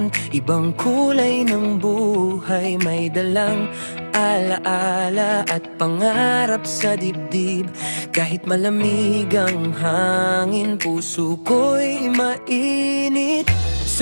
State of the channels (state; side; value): inverted; both; correlation -1.00